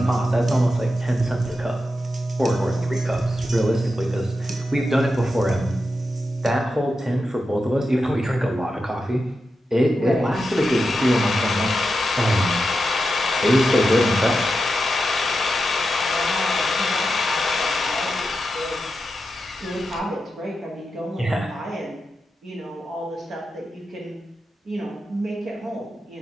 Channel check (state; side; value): normal; both; correlation 0.89